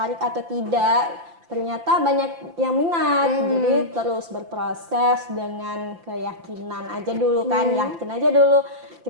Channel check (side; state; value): left; late; 5.8 ms